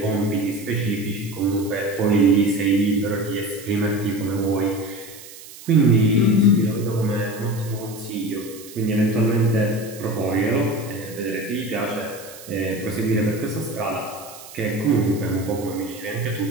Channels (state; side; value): noise; right; hiss, 17 dB below the sound